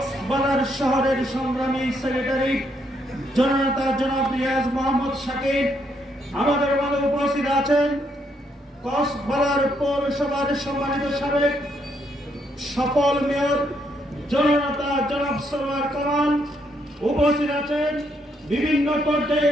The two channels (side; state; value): both; normal; correlation 0.74